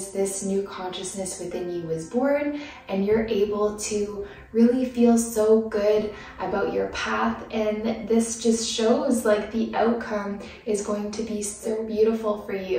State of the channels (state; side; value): identical; both; correlation 1.00